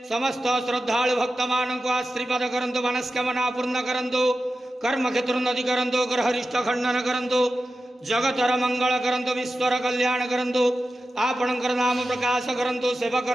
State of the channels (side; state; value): both; normal; correlation 0.92